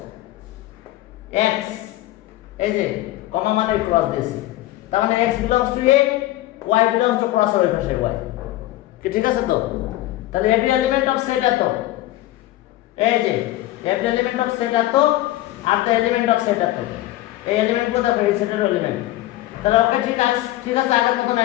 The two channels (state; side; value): quieter; right; 16.1 dB